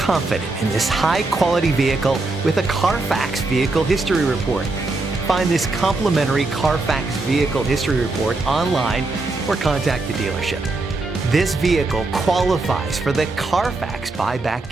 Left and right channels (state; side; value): quieter; left; 3.3 dB